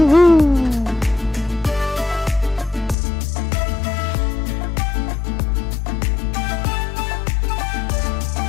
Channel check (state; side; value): drops out; right; at 3.0 s